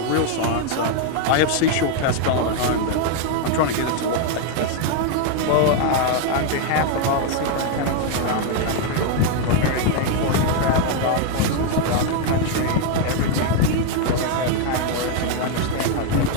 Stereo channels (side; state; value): both; different; correlation 0.00